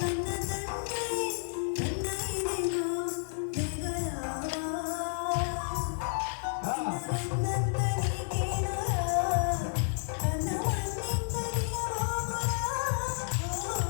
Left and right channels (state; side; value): silent; right; digital silence